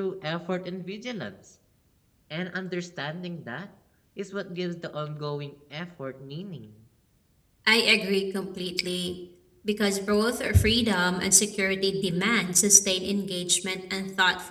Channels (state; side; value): identical; both; correlation 1.00